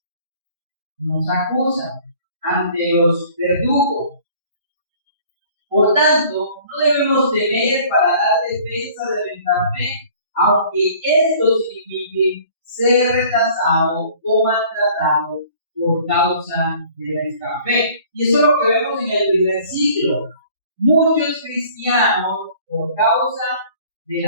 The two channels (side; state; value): both; inverted; correlation -0.52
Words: nos acusan, ante los verdugos. Por tanto, no debemos temer para dar defensa de nuestra fe, aunque esto signifique ser rechazado o maltratado por causa de nuestra fe. Y eso es lo que vemos en el primer siglo. Muchos cristianos, por causa de